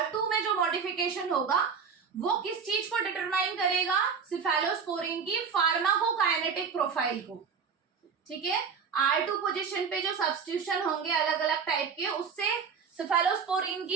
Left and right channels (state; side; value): quieter; left; 6.1 dB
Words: में जो मॉडिफिकेशन होगा वो किस चीज को डिटरमाइन करेगा? सिफेलोस्पोरिन की फार्माकोकाइनेटिक प्रोफाइल को, ठीक है। R2 पोजीशन पे जो सब्स्टिट्यूशन होंगे अलग अलग टाइप के, उससे सिफेलोस्पोरिन